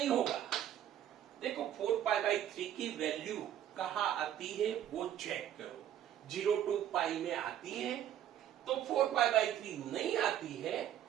होगा। देखो 4π/3 की वैल्यू कहाँ आती है वो चेक करो, 0 to π में आती है। तो 4π/3 नहीं आती है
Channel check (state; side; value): quieter; left; 10.9 dB